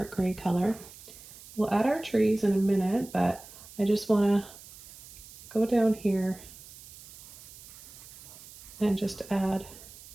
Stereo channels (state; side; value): noise; right; hiss, 18 dB below the sound